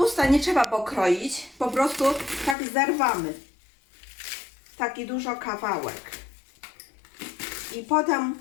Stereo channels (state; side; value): drops out; right; at 2.6 s